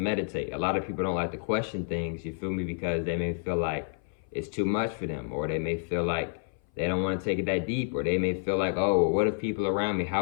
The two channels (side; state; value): right; silent; 57 dB below the other